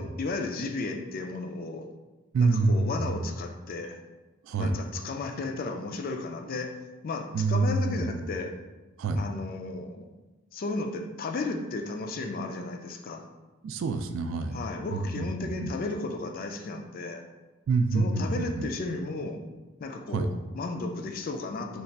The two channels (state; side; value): normal; both; correlation 0.62